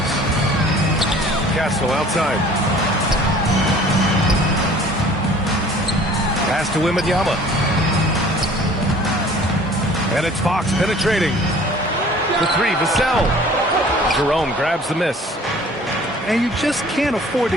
Castle outside. Pass to Wembanyama. And it's Fox penetrating. The three, Vassell. Jerome grabs the miss. And you just can't afford to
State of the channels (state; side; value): normal; both; correlation 0.50